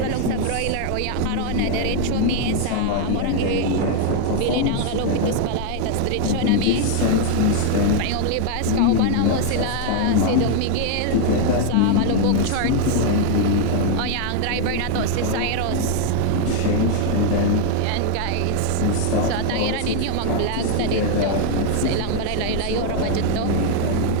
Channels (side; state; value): both; different; correlation 0.00